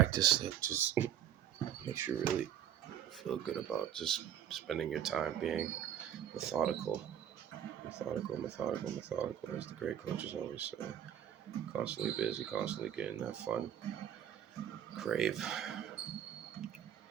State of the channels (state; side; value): quieter; left; 10.2 dB